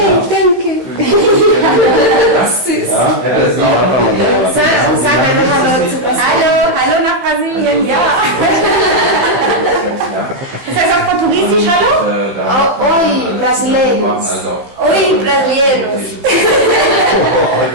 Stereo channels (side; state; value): left; late; 15 ms